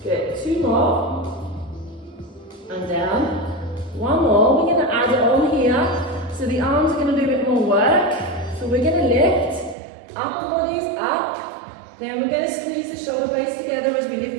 Good. 2 more. And down. 1 more. We're going to add it on here. So the arms are going to do a bit more work. So we're going to lift. Upper body is up. Then we're going to squeeze the shoulder blades together as we lift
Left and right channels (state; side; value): drops out; left; at 9.8 s